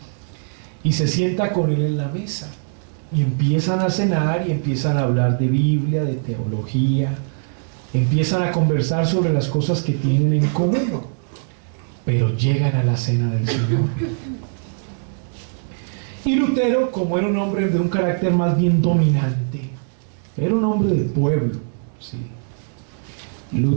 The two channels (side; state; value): left; silent; digital silence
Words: y se sienta con él en la mesa, y empiezan a cenar y empiezan a hablar de Biblia, de teología, empiezan a conversar sobre las cosas que tienen en común, pero llegan a la cena del Señor. Y Lutero, como era un hombre de un carácter más bien dominante, era un hombre de pueblo, ¿sí?